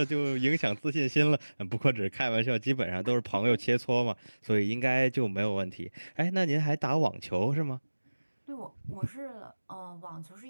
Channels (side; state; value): both; inverted; correlation -1.00